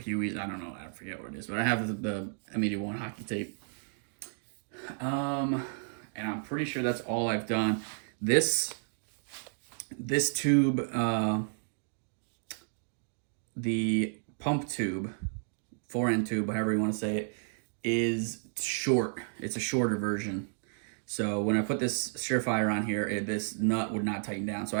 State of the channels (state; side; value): silent; left; digital silence